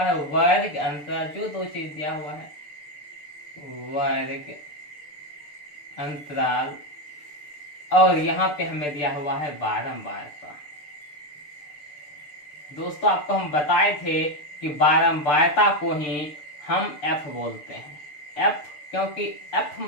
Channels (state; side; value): late; right; 6.8 ms